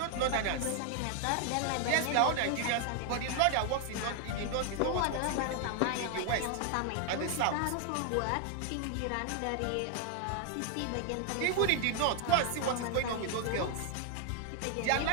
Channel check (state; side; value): different; both; correlation 0.00